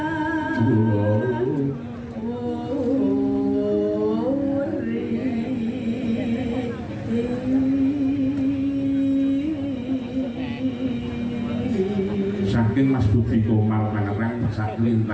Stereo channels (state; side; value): identical; both; correlation 1.00